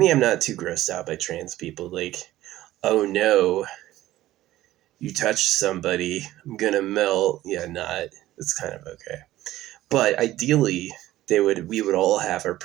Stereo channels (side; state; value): left; quieter; 15.1 dB